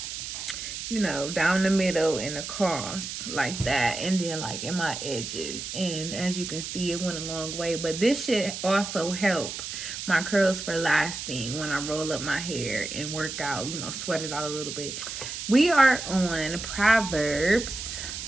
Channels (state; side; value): noise; right; hiss, 7 dB below the sound